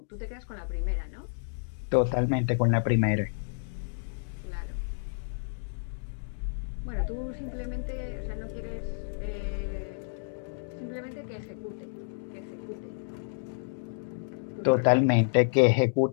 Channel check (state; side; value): silent; right; digital silence